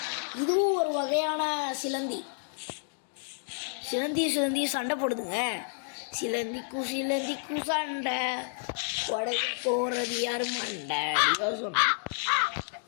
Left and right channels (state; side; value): silent; right; digital silence